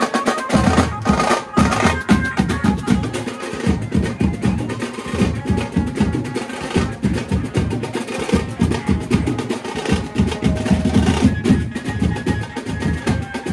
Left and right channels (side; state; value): both; identical; correlation 1.00